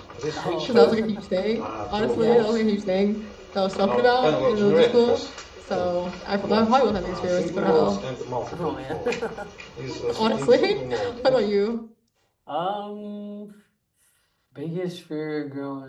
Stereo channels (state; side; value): identical; both; correlation 1.00